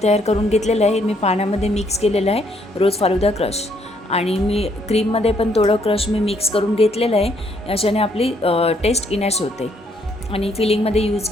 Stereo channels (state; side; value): normal; both; correlation 0.69